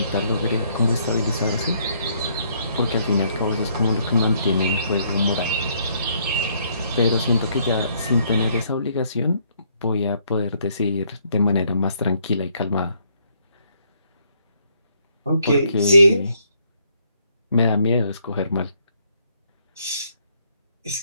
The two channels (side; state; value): both; inverted; correlation -0.69